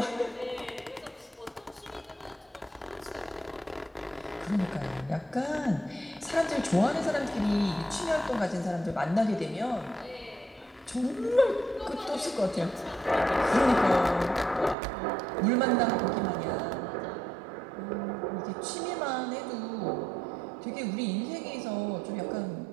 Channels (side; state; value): left; drops out; at 14.8 s